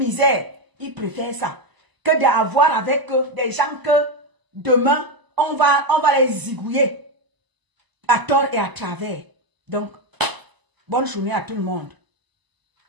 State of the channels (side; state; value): left; late; 1.0 ms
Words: ils préfèrent ça. Que d'avoir avec des gens que demain, on va les zigouiller à tort et à travers. Donc, bonne journée à tout le monde.